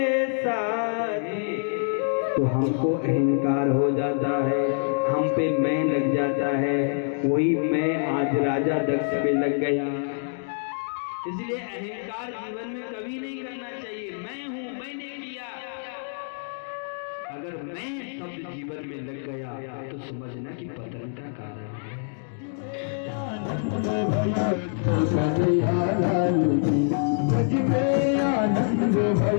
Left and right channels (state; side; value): silent; right; digital silence